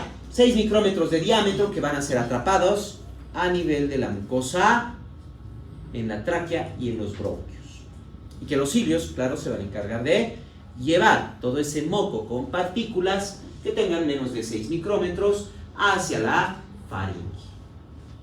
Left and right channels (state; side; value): identical; both; correlation 1.00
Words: 6 micrómetros de diámetro que van a ser atrapados a nivel de la mucosa, en la tráquea y en los bronquios. Y que los cilios, claro, se van a encargar de llevar todo ese moco con partículas que tengan menos de 6 micrómetros hacia la faringe.